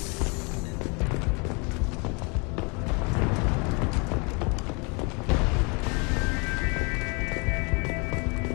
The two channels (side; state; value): right; quieter; 31.7 dB